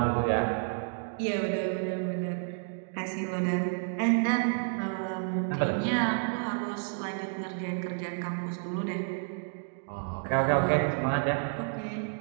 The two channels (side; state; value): left; silent; 58 dB below the other